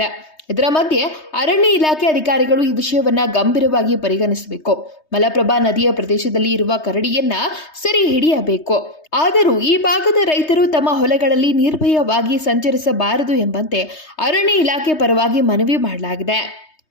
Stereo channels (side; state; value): right; late; 3.2 ms